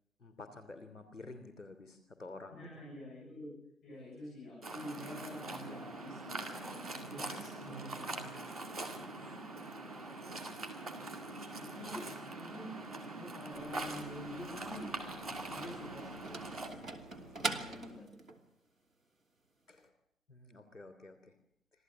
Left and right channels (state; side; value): normal; both; correlation 0.61